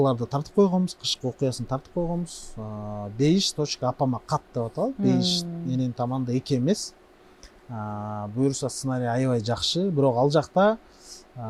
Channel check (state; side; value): identical; both; correlation 1.00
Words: тартып койгонбуз, кышкы окуясын тартып койгонбуз. Бейиш.апама кат деп аталат. Бейиш менин таманда эки эмес. Буюрса сценарий аябай жакшы, бирок ал жакта